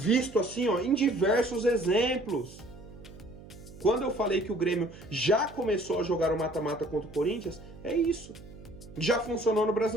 assim, ó, em diversos exemplos. Quando eu falei que o Grêmio já começou a jogar o mata-mata contra o Corinthians, é isso. Já funcionou no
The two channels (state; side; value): noise; right; hum, 18 dB below the sound